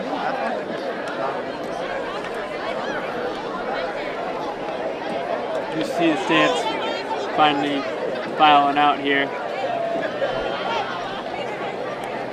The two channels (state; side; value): identical; both; correlation 1.00